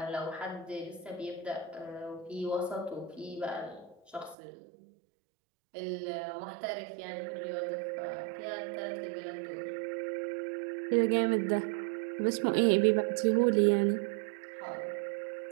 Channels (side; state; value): left; drops out; at 4.4 s